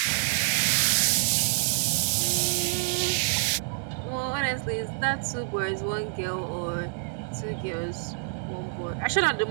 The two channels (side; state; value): left; silent; 60 dB below the other